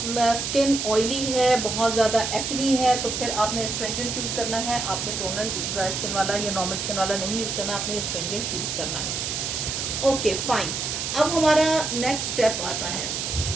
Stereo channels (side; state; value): right; noise; hiss, 3 dB below the sound